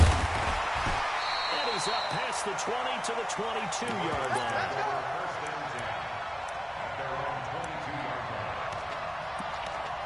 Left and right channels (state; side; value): identical; both; correlation 1.00